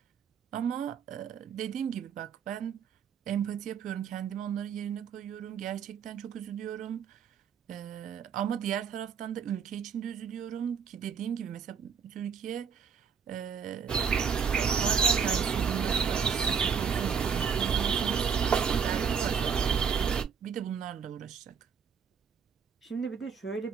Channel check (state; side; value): quieter; left; 6.8 dB